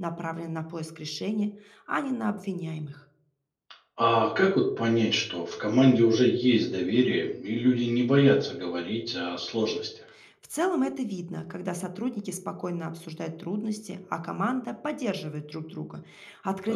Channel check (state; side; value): identical; both; correlation 1.00